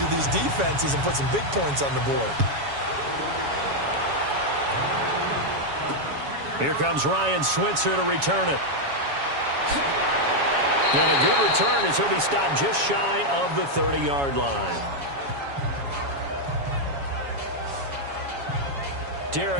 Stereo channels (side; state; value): left; late; 7.2 ms